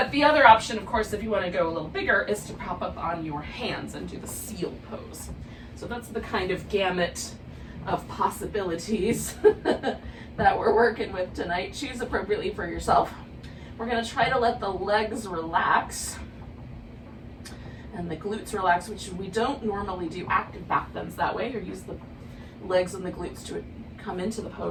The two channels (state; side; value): identical; both; correlation 1.00